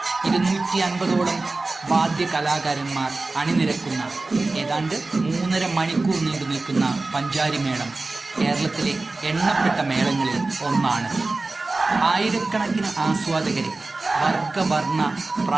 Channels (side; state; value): left; quieter; 3.3 dB